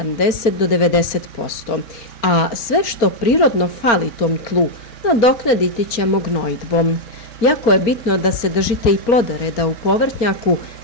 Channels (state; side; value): late; right; 4.3 ms